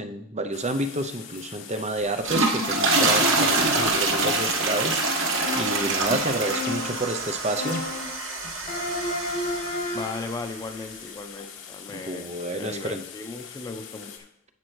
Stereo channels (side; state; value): both; normal; correlation 0.13